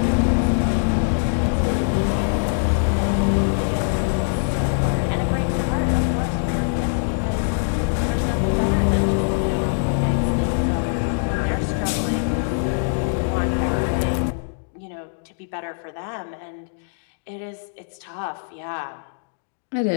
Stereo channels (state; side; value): silent; right; digital silence